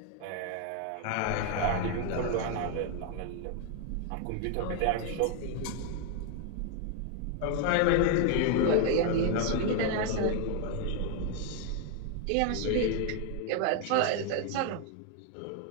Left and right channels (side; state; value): both; different; correlation 0.00